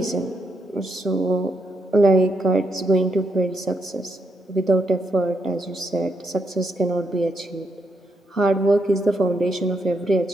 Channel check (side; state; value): both; normal; correlation 0.79